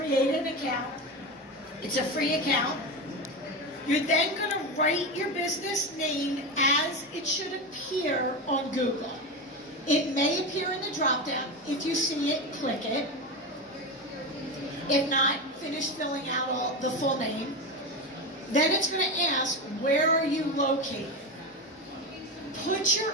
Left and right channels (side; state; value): both; normal; correlation 0.19